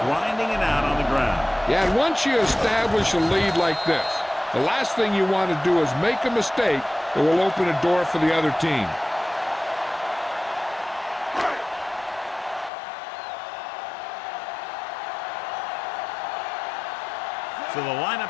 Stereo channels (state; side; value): drops out; right; at 12.7 s